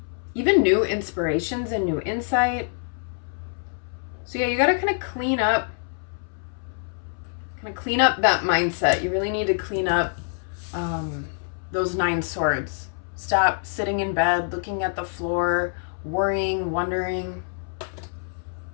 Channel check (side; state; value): right; silent; 61 dB below the other